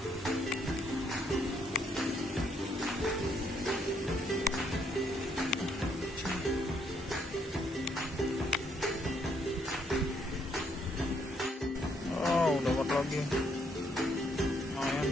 Oh, dapat lagi. Lumayan.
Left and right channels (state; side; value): normal; both; correlation 0.71